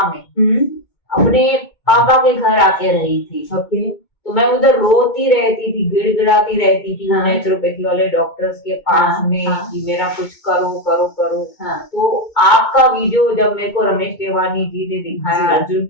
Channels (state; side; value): late; right; 2.2 ms